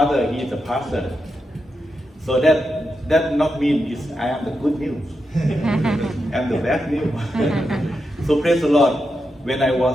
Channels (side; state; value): both; normal; correlation 0.86